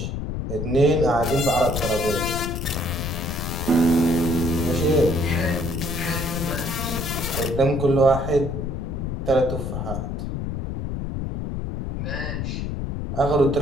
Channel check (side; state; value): left; noise; rumble, 4 dB below the sound